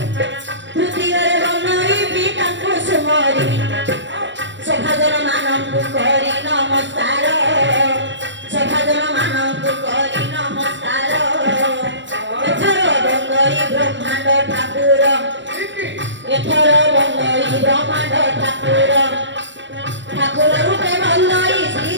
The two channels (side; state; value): left; late; 0.53 ms